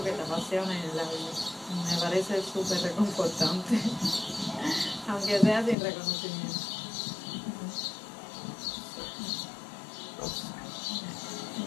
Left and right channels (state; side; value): drops out; right; at 5.8 s